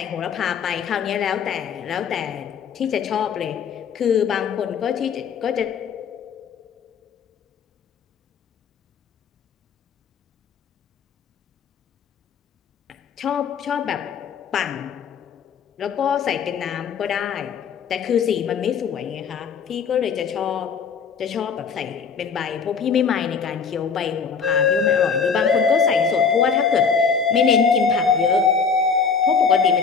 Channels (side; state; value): right; quieter; 6.0 dB